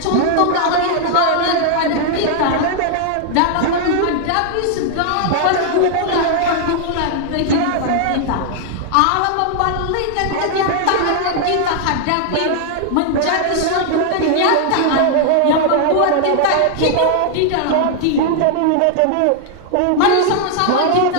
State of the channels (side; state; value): both; different; correlation 0.00